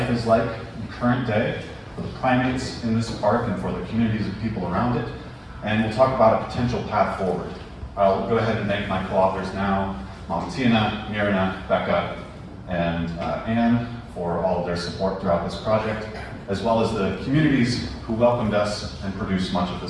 is like in current day for the primates in this park and for the communities of people around it. And we'll talk about a potential path forward. I'll go ahead and thank my co-authors now, Mitea, Mirna, Becca, and Anne for all of their support throughout this project, as well as the communities who welcomed us and produced much of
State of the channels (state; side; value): identical; both; correlation 1.00